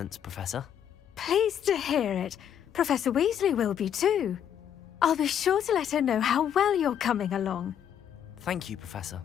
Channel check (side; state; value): right; quieter; 9.3 dB